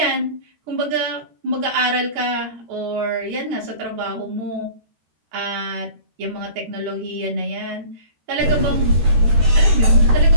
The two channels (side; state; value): left; late; 13 ms